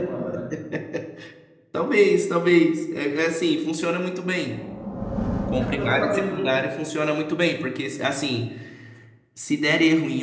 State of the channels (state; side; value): identical; both; correlation 1.00